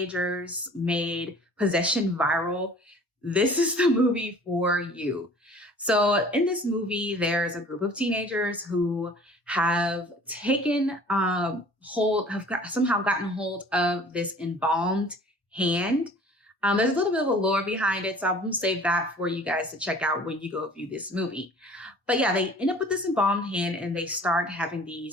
made possession viral, this is the movie for you. So in this movie, there's a group of teenagers who have taken somehow gotten hold of this embalmed hand. There's a little bit of a lore behind it, so I'm going to save that for you guys to check out when you go view this movie. But yeah, they end up with this embalmed hand and they start having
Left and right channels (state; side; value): normal; both; correlation 0.48